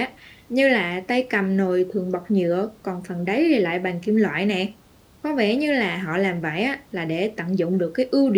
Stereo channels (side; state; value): both; identical; correlation 1.00